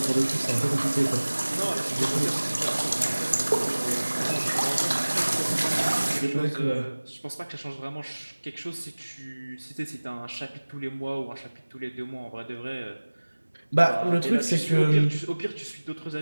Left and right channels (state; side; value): inverted; both; correlation -1.00